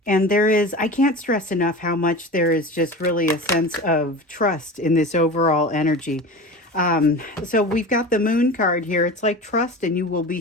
And I can't stress enough how much there is just really a sense of trust in this overall energy. So we've got the Moon card here. It's like trust and you will be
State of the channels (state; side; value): normal; both; correlation 0.32